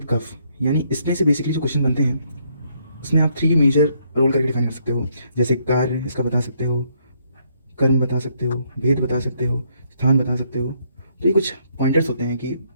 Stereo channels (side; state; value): both; inverted; correlation -0.72